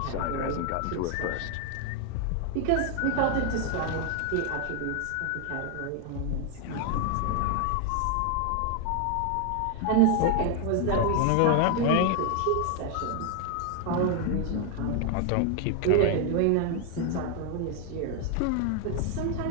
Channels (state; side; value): different; both; correlation 0.00